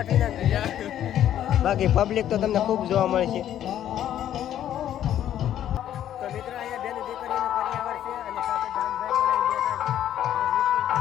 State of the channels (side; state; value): right; quieter; 11.2 dB